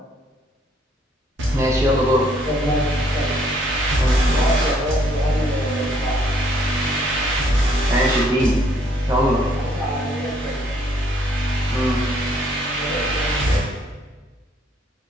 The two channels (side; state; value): both; normal; correlation 0.66